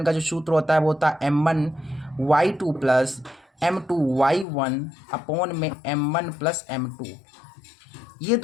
का जो सूत्र होता है वो होता है m1 y2 plus m2 y1 upon में m1 प्लस m2। ये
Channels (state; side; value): drops out; right; at 4.5 s